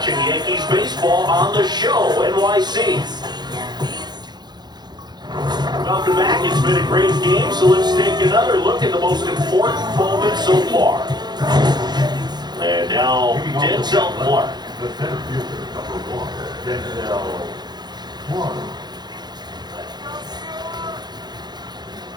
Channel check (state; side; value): late; left; 0.21 ms